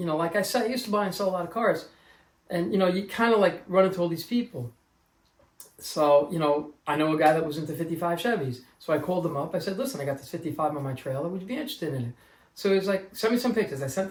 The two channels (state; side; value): identical; both; correlation 1.00